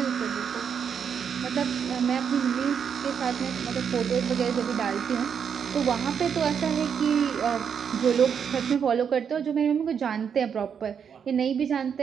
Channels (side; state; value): left; quieter; 7.3 dB